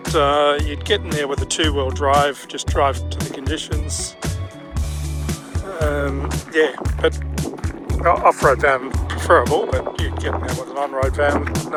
you'd get in there with a two-wheel drive, just drive to the conditions. Yeah, but off-road van preferable, but you'd get in there with an on-road van,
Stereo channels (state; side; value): identical; both; correlation 1.00